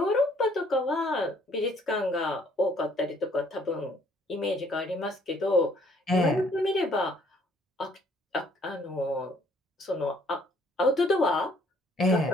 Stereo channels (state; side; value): normal; both; correlation 0.62